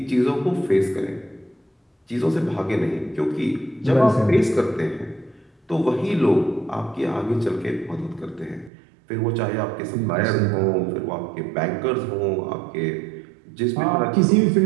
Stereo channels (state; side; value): drops out; left; at 8.7 s